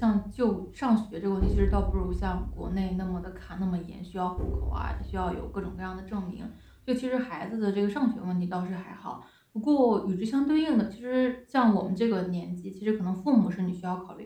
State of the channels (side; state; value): both; identical; correlation 1.00